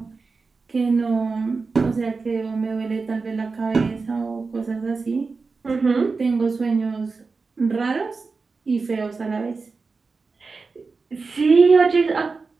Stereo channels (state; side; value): quieter; left; 4.3 dB